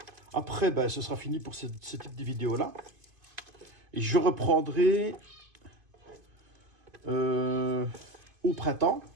après, ben, ce sera fini pour ce type de vidéo-là. Et je reprendrai au printemps.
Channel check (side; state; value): left; late; 2.5 ms